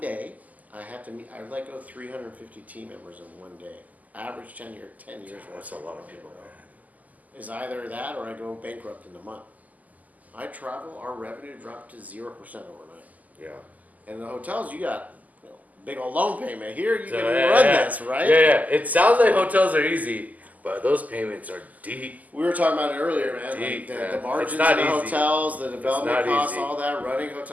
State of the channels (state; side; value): late; left; 0.078 ms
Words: I had to meet. I let go 350 team members in one day. Average tenure, 10 years. That's a lot of people, man. Is either that or I go bankrupt in a month. I travel. Our revenue dropped to 0% overnight. Yeah. And in the hotels, you got big old loan payment. Here, you So, can yeah, run yeah. this, right? Yeah. It sounds like hotels are easy, but those payments are deep. We were talking about it earlier, man. Deep, Like man. the margins in It's not the easy. hotels, the development not costs, easy. all that. Running